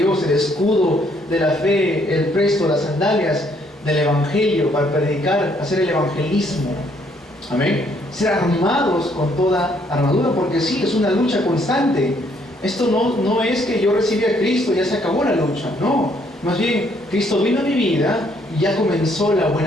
el escudo de la fe, el presto, las sandalias del evangelio, para predicar, hacer el evangelismo. Amén. Ser armados con toda armadura, porque sí, es una lucha constante. Esto no es que yo recibí a Cristo y ya se acabó la lucha, no. Más bien, Cristo vino a mi vida y ya comenzó la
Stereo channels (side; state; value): both; normal; correlation 0.68